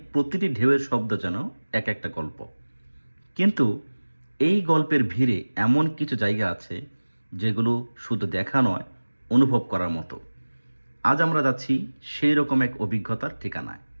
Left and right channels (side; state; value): both; inverted; correlation -1.00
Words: প্রতিটি ঢেউয়ের শব্দ যেন এক একটা গল্প। কিন্তু এই গল্পের ভিড়ে এমন কিছু জায়গা আছে যেগুলো শুধু দেখা নয়, অনুভব করার মতো। আজ আমরা যাচ্ছি সেই রকম এক অভিজ্ঞতার ঠিকানায়,